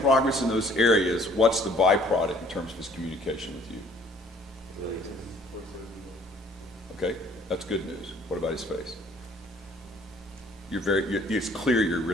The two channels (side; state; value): both; normal; correlation 0.57